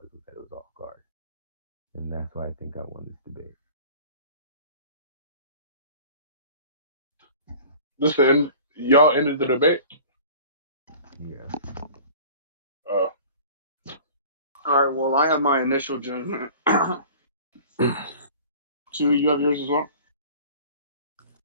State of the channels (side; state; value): both; inverted; correlation -0.44